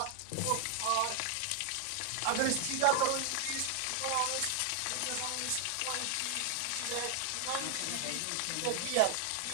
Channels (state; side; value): different; both; correlation 0.00